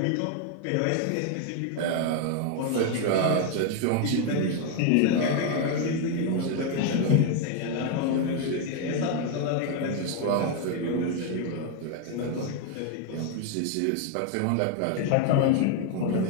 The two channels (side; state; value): both; different; correlation 0.01